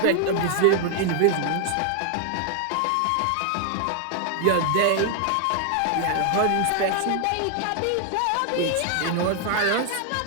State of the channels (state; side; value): different; both; correlation 0.00